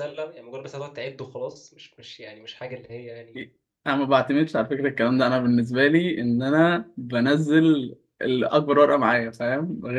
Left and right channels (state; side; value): identical; both; correlation 1.00